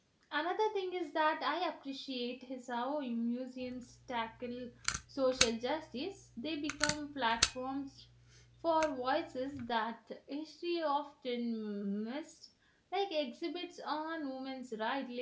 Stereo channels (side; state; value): both; identical; correlation 1.00